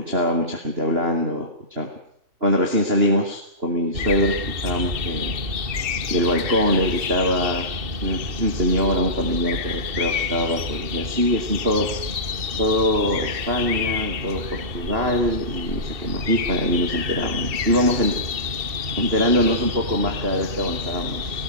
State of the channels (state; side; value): late; left; 2.7 ms